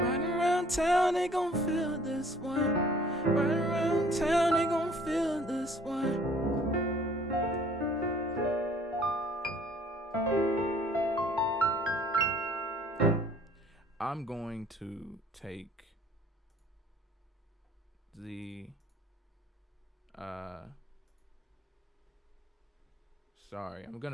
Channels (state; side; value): normal; both; correlation 0.56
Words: around town they gon' feel this one. Right around town they gon' feel this one. I'm going to take the I'm